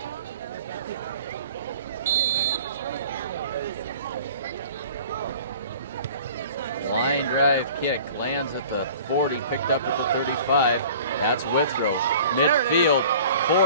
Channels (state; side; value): inverted; both; correlation -0.46